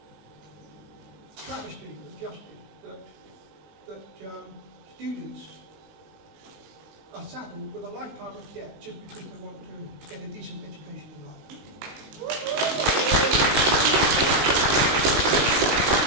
travesty of justice that students are saddled with a lifetime of debt just because they want to get a decent education in life.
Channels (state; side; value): late; left; 19 ms